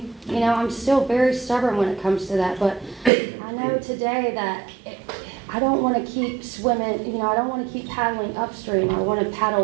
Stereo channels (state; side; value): drops out; left; at 3.1 s